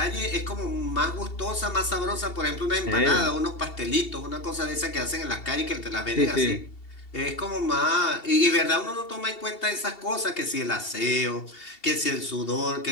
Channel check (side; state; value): right; late; 2.7 ms